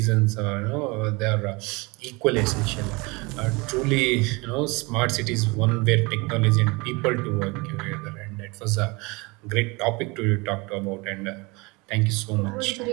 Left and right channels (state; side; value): quieter; left; 26.2 dB